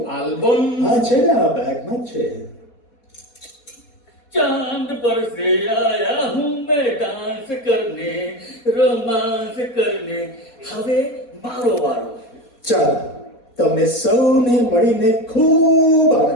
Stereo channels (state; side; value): late; right; 4.2 ms